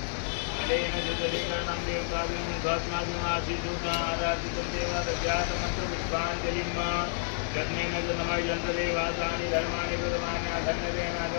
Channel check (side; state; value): right; silent; digital silence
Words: अलेन जलेकरणं देवताभिं गत्माभिमासी दूतं आराधितं देवादध्यात्मन्त्र पुष्पाञ्जलिं यज्ञेन जन्मय जन्तदेवासानि धर्माणि बुधमानि